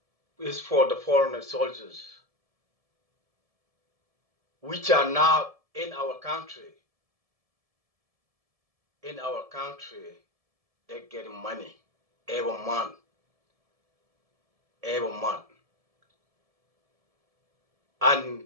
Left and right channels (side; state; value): left; late; 1.7 ms